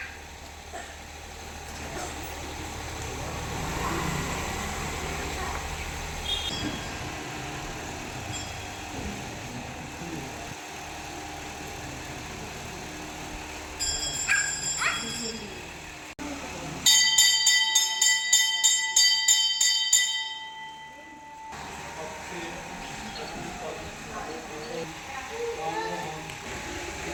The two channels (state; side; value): identical; both; correlation 1.00